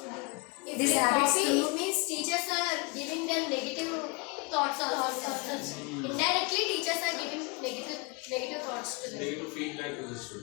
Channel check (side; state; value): right; quieter; 28.2 dB